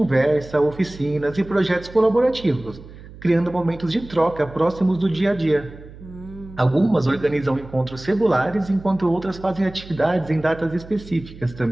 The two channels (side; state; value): right; noise; hum, 17 dB below the sound